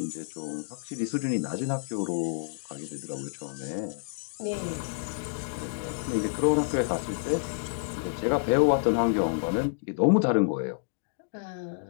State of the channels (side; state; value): right; silent; digital silence